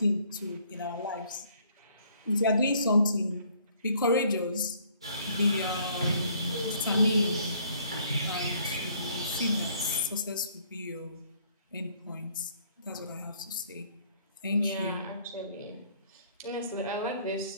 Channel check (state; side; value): inverted; both; correlation -0.62